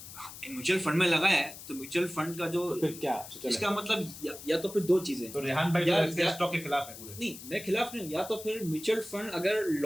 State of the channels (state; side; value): noise; left; hiss, 14 dB below the sound